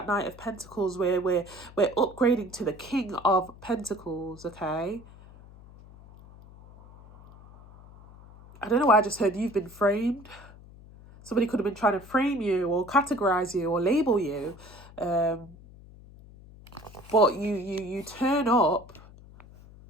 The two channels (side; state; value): left; noise; hum, 21 dB below the sound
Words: Knight of Pentacles, where we're upgrading to the King of Pentacles, okay? I don't know why I just heard you've been framed. Somebody could have been trying to frame you, or categorize you, or label you. But you turn up